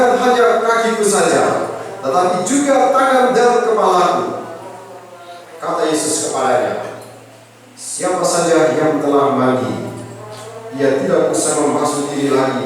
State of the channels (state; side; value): identical; both; correlation 1.00